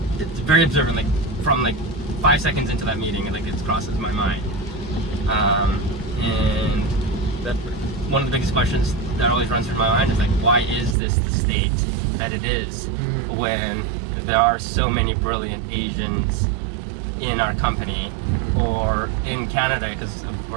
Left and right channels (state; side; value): drops out; left; at 11.0 s